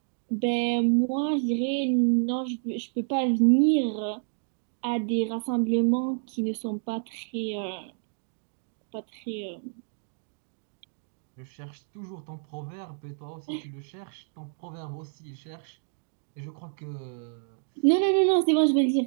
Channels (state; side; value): silent; left; digital silence